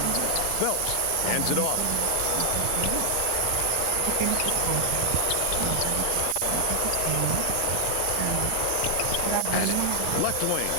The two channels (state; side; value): different; both; correlation 0.00